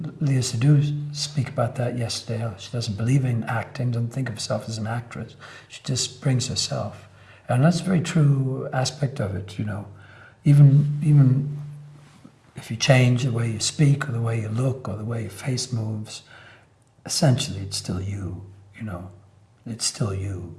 Leah Seydoux speak about that yesterday. She doesn't believe in acting, doesn't think of herself as an actress. She just brings herself. And that's a very true aspect of it, Even if you change the way you speak or the way you look or the way your face moves, essentially it's still you, It's still you.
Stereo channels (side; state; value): both; identical; correlation 1.00